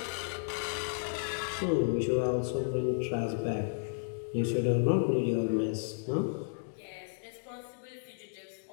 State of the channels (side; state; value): right; silent; digital silence